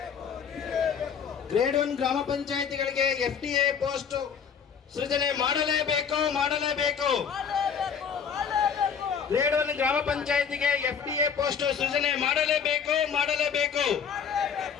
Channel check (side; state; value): right; quieter; 7.0 dB